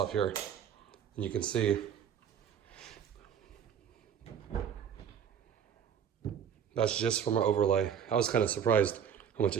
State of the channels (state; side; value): quieter; left; 8.2 dB